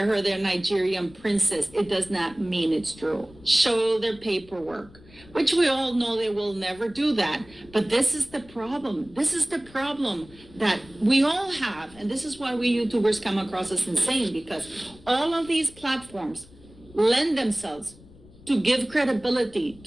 her their Nigerian princess, it does not mean it's true. Show their paperwork, which we all know they will never do that. But this is the problem. This is the problem that we all have. And this is why we YouTubers come across as insane, because all of these platforms lend themselves to give credibility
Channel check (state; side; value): noise; left; rumble, 23 dB below the sound